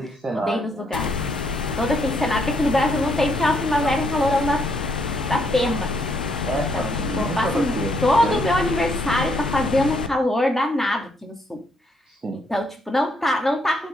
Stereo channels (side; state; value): both; normal; correlation 0.72